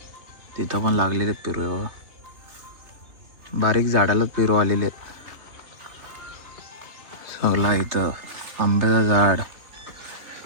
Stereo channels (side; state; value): left; late; 3.2 ms